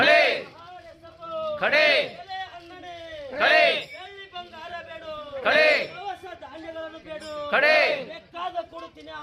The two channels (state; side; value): identical; both; correlation 1.00